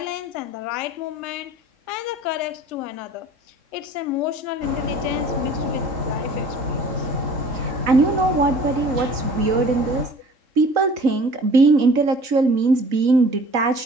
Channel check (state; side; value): late; left; 3.9 ms